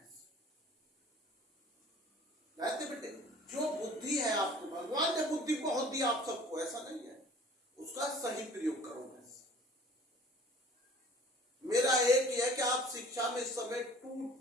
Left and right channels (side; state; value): both; normal; correlation 0.49